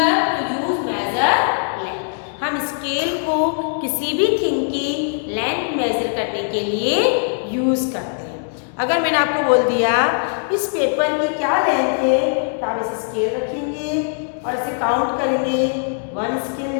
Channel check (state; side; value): silent; right; digital silence